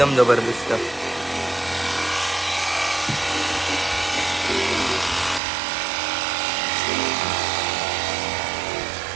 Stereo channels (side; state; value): left; drops out; at 5.4 s